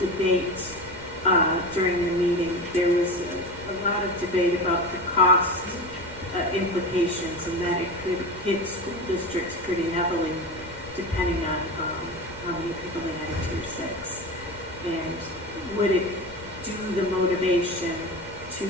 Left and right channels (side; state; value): both; normal; correlation 0.25